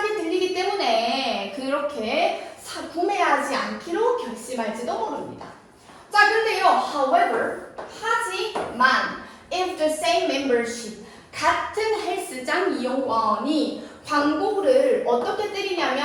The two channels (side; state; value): both; identical; correlation 1.00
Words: 들리기 때문에 그렇게 구매하지 않기로 결심할지도 모릅니다. 자, 근데요, however, 하지만, if the same membership, 같은 헬스장 이용권이 광고를 어떻게